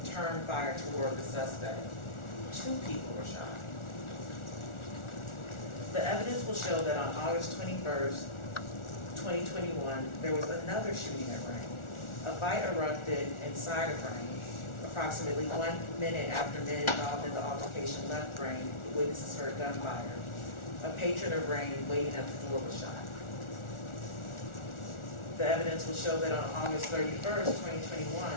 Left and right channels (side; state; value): right; late; 1.4 ms